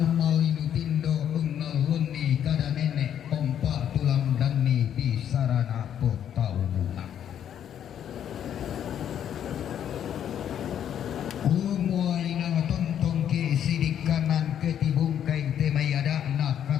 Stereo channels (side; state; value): right; quieter; 9.6 dB